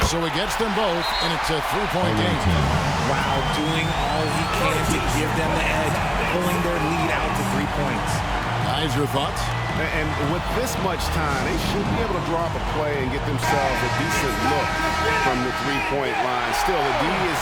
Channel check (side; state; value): both; identical; correlation 1.00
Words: So he gets them both, and it's a 3-point game. Wow, doing all he can to give them the edge, pulling their lead out to 3 points. Guys, your thoughts? And with this much time, they should be able to drop a play and get themselves a decent look from the 3-point line. Still, the D is